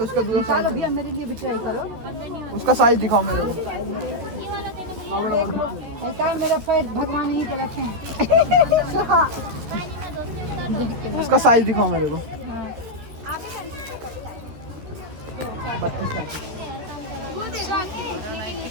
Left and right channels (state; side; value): late; left; 13 ms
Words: उसका दूसरा निकालो साइज, भैया, मेरे लिए भी ट्राई करो। उसका साइज दिखाओ मेरे को। देखा मेरा पैर भगवान ही कलेक्शन। उसका साइज दिखाओ मेरे को। 32